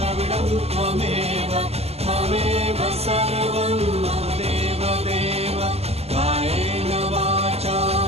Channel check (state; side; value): late; left; 0.30 ms